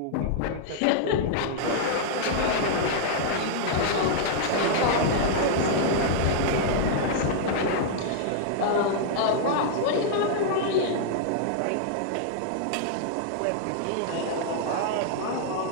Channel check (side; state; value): both; different; correlation -0.01